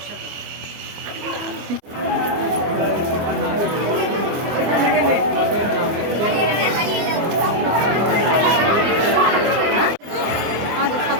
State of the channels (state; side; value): late; left; 24 ms